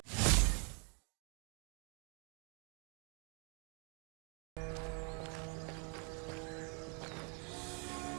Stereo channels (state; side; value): quieter; left; 37.5 dB